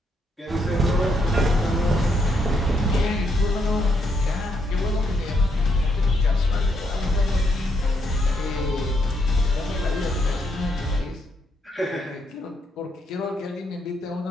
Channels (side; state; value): both; normal; correlation 0.76